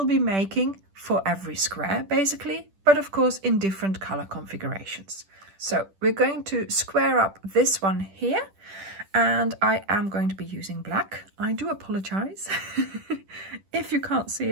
be making for every square basically, but of course in different color configurations. So we're going to square up this one here, and I am going to be using black. I do apologize if you can't see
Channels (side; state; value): left; late; 10 ms